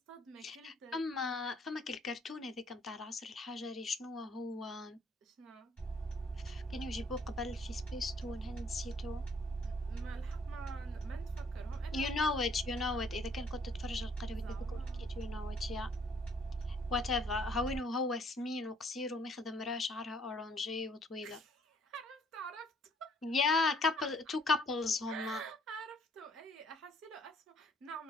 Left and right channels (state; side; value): normal; both; correlation 0.63